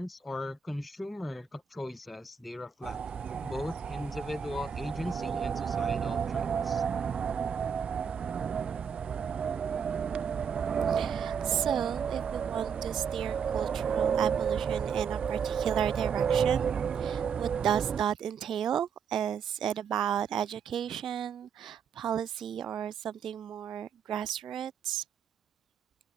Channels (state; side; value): quieter; left; 6.9 dB